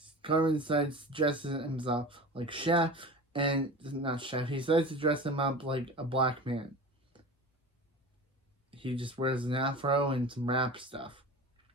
Cartman decides to dress himself like chef, and not chef. He decides to dress him up like a black man. He just wears an afro and some rap stuff.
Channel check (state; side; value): normal; both; correlation 0.34